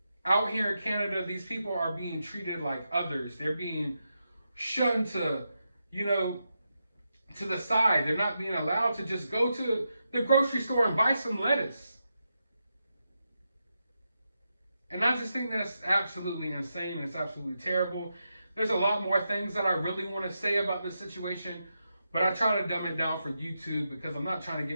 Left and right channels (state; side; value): inverted; both; correlation -0.86